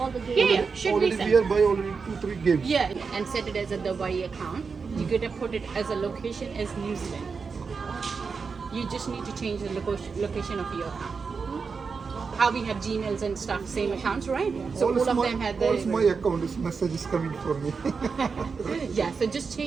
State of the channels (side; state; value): left; quieter; 5.2 dB